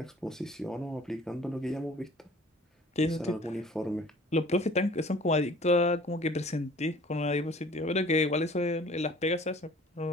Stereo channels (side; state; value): both; normal; correlation 0.50